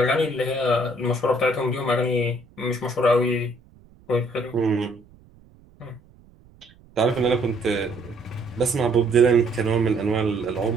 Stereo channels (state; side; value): noise; right; rumble, 27 dB below the sound